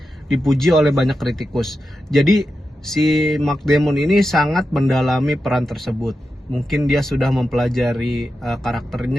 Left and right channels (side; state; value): both; normal; correlation 0.90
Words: dipuji oleh banyak kritikus. Jadi si Matt Damon ini sangat mendalami peran tersebut. Mungkin dia sudah mempelajari